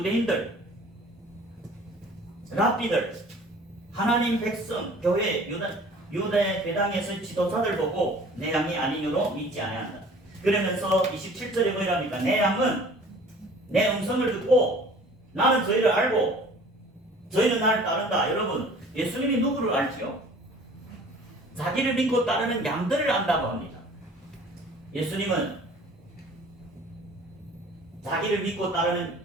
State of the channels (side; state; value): both; normal; correlation 0.49